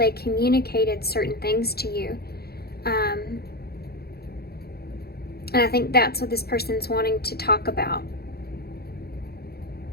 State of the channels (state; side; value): late; right; 0.46 ms